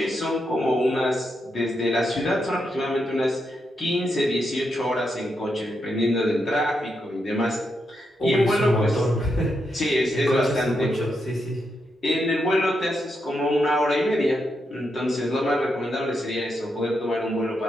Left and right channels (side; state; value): both; normal; correlation 0.83